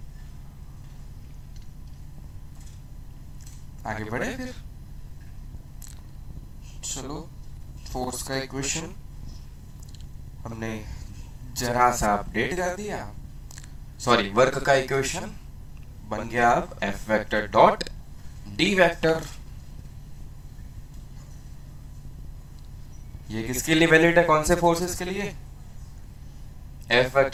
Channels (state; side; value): identical; both; correlation 1.00